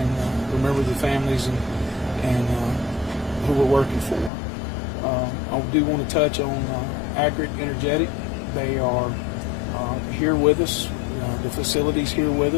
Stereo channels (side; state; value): right; drops out; at 4.3 s